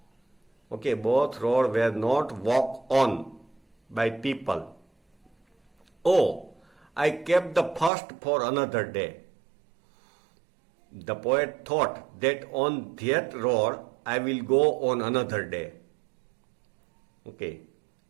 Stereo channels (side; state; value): left; drops out; at 7.9 s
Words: Okay, both road were not walked on by people. Oh, I kept the first for another day. The poet thought that on that road I will go on another day. Okay,